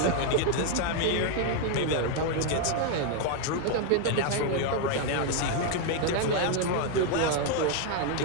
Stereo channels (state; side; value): different; both; correlation 0.01